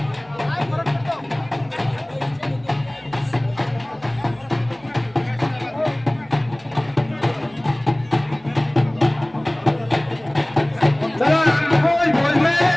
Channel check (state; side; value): noise; right; rumble, 29 dB below the sound